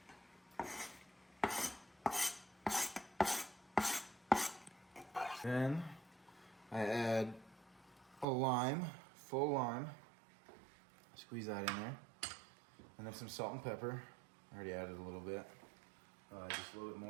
Then I add a lime, full lime. Squeeze that in there. And then some salt and pepper. I already added a little bit. Just a little bit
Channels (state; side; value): drops out; left; at 8.2 s